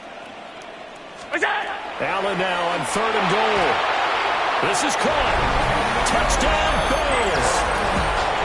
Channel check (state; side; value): identical; both; correlation 1.00